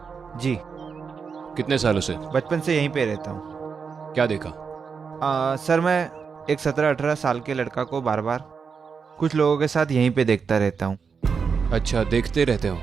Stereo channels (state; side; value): quieter; left; 5.8 dB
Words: जी। कितने सालों से? बचपन से यहीं पे रहता हूँ। क्या देखा? सर मैं एक 17-18 साल के लड़का को बार बार कुछ लोगों के साथ यहीं पे देखता रहता हूँ। अच्छा, देखते रहते हो?